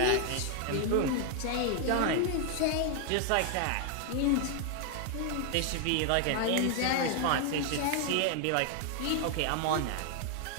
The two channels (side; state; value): both; different; correlation 0.00